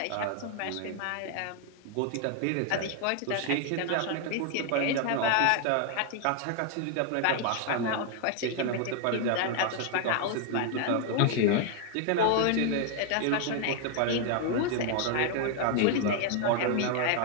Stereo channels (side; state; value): both; different; correlation 0.00